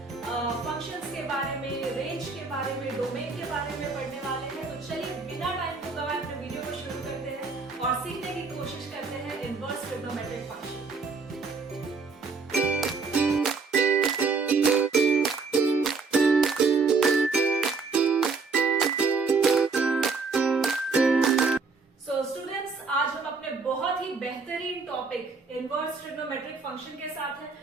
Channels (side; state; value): left; quieter; 4.5 dB